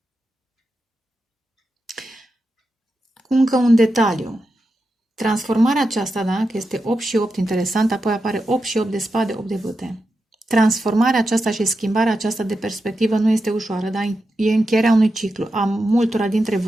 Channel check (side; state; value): both; normal; correlation 0.88